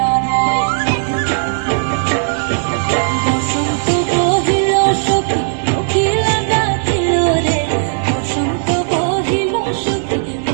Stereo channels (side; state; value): left; silent; 69 dB below the other